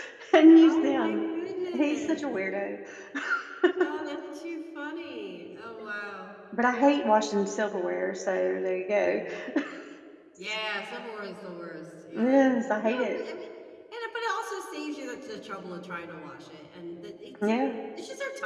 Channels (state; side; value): identical; both; correlation 1.00